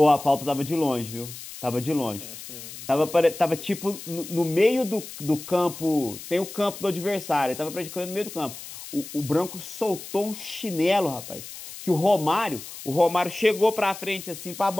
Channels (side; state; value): left; noise; hiss, 13 dB below the sound